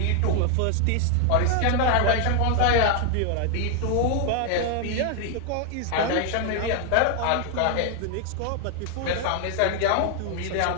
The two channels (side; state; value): both; different; correlation 0.00